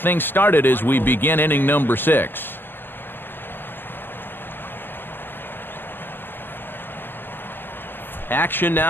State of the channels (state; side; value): late; right; 0.097 ms